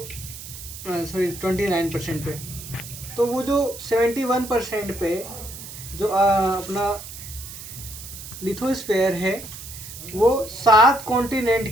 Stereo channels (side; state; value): right; noise; hiss, 12 dB below the sound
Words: सॉरी, 29% पे। तो वो जो 71% पे जो अपना लिथोस्फेयर है, वो 7 कॉन्टिनेंट